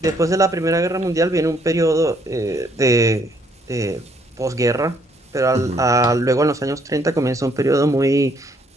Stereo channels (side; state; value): both; normal; correlation 0.67